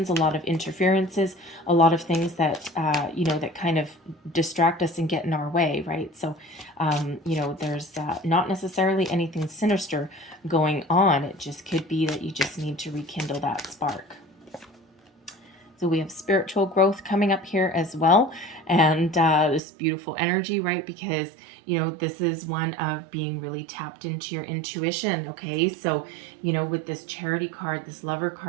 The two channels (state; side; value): drops out; left; at 19.6 s